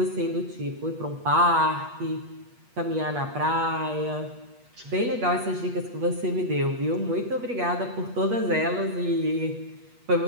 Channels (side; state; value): left; late; 8.3 ms